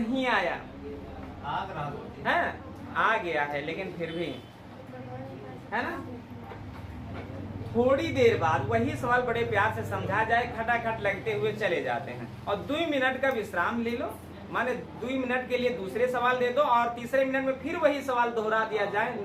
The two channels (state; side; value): identical; both; correlation 1.00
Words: आया है? आ गया है, लेकिन फिर भी, है ना, थोड़ी देर बाद वही सवाल बड़े प्यार से समझा जाए, खटाखट लगते हुए चले जाते हैं। और 2 मिनट का विश्राम ले लो, माने 2 मिनट के लिए दूसरे सवाल दे दो और तीसरे मिनट में फिर वही सवाल दोहरा दिया जाए,